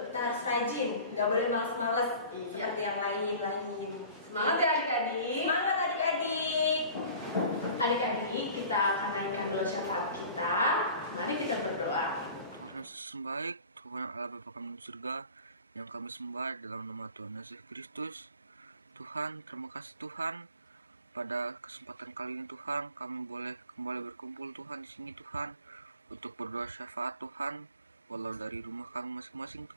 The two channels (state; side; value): inverted; both; correlation -0.43